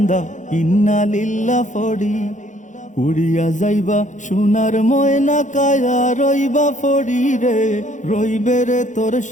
ইন্না লিল্লাহ ফড়ি। উড়িয়া যাইবা সোনার ময়না কায়া রইবা ফড়ি রে, রইবে রে তোর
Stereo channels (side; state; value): right; late; 0.36 ms